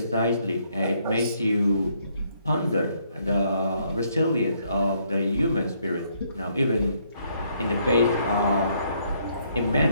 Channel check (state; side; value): inverted; both; correlation -0.70